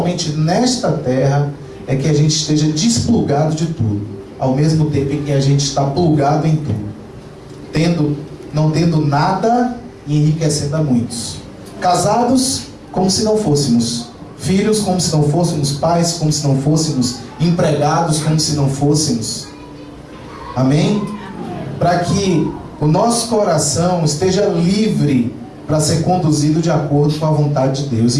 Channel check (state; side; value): identical; both; correlation 1.00